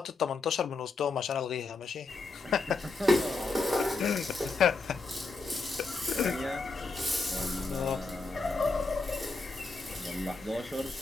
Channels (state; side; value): quieter; right; 3.7 dB